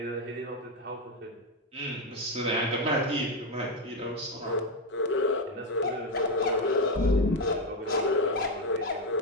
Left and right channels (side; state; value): both; normal; correlation 0.07